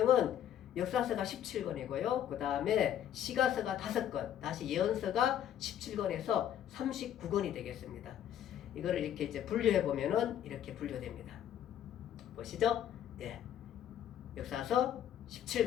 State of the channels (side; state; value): right; quieter; 10.4 dB